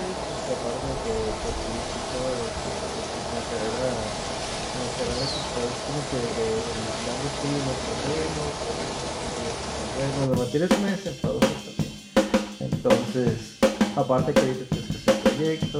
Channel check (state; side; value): identical; both; correlation 1.00